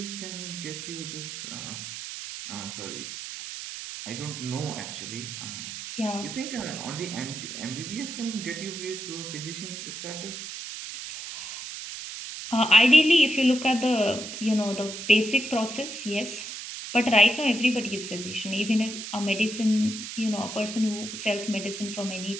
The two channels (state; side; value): noise; right; hiss, 8 dB below the sound